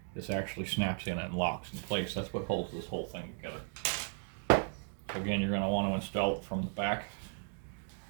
this actually snaps in and locks in place. That's what holds this whole thing together. So again, you're going to want to install it from the back.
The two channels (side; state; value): left; silent; 54 dB below the other